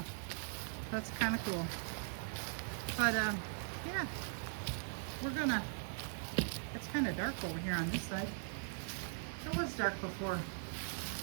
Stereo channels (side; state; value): left; silent; digital silence